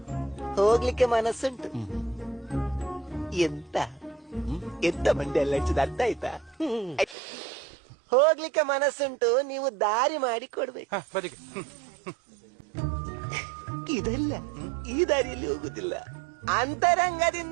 ಹೋಗ್ಲಿಕ್ಕೆ ಮನಸ್ಸುಂಟು. ಎಂತ ಎಂತ ಮಂಡಿ ಎಲ್ಲ ಹಚ್ಚಿದ ಅರ್ಥ ಆಯ್ತಾ? ಹೋಗ್ಲಿಕ್ಕೆ ಮನಸ್ಸುಂಟು, ನೀವು ದಾರಿ ಮಾಡಿ ಕೊಡ್ಬೇಕು. ಇದಲ್ಲ, ಈ ದಾರಿಯಲ್ಲಿ ಹೋಗುದಿಲ್ಲ.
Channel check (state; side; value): drops out; left; at 7.2 s